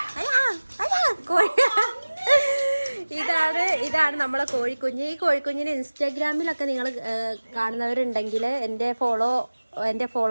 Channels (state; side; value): inverted; both; correlation -1.00